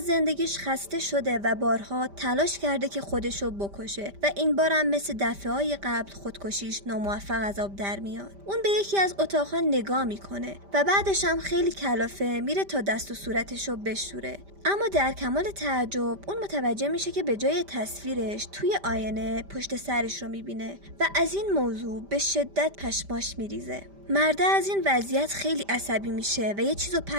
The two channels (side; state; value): left; late; 5.1 ms